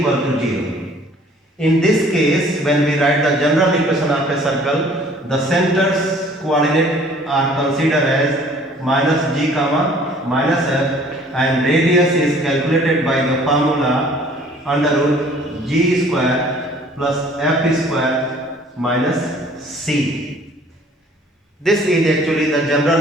to 0. In this case, when we write the general equation of a circle, the center's coordinate are considered as minus g comma minus f, and radius is calculated by the formula under root g square plus f square minus c. This is actually the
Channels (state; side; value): normal; both; correlation 0.54